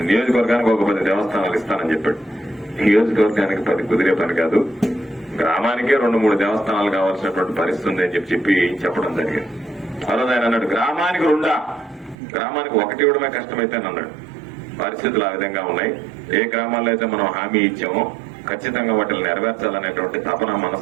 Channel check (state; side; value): drops out; left; at 12.2 s